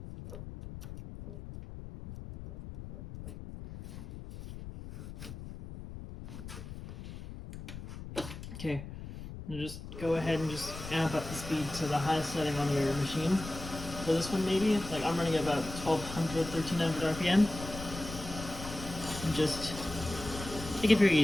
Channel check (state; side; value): noise; left; rumble, 11 dB below the sound